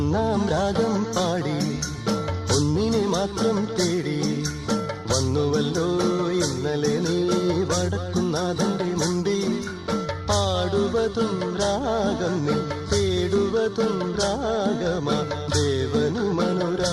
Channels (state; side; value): identical; both; correlation 1.00